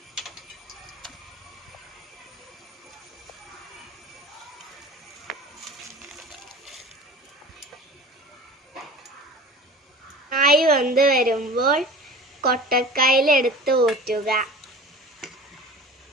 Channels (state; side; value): normal; both; correlation 0.38